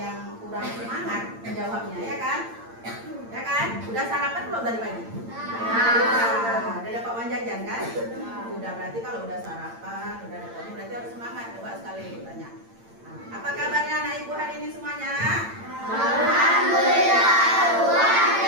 kurang semangat menjawabnya, ya kan? Ya kan? Udah sarapan belum tadi pagi? Udah dapat uang jajan kan? Udah, berarti kalau udah sarapan, udah dapat uang, berarti harus semangat. Coba sekali ibu tanya. Apa kabarnya anak ibu hari ini semuanya? Alhamdulillah, luar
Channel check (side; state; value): left; late; 8.8 ms